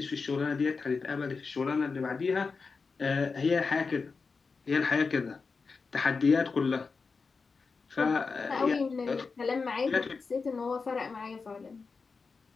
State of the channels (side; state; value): right; quieter; 4.7 dB